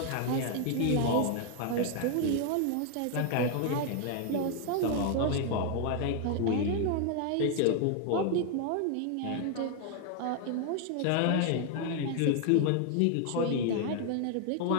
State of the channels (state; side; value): different; both; correlation 0.00